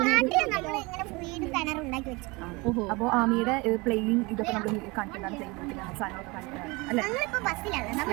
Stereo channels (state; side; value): quieter; left; 25.4 dB